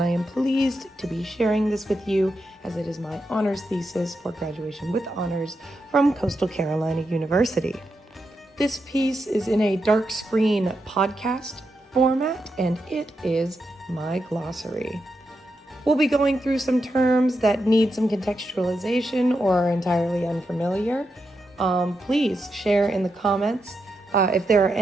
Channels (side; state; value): both; normal; correlation 0.85